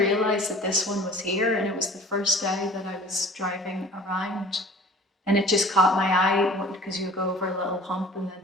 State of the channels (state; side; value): normal; both; correlation 0.47